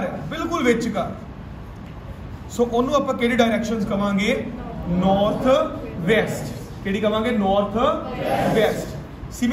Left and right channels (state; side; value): identical; both; correlation 1.00